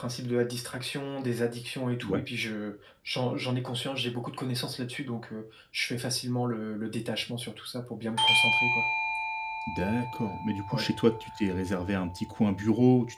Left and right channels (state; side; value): identical; both; correlation 1.00